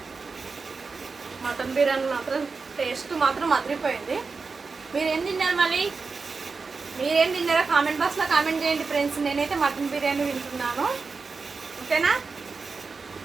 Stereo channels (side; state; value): left; quieter; 4.5 dB